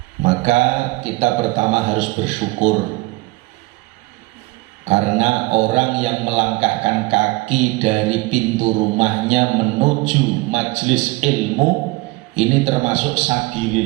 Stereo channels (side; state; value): left; quieter; 22.3 dB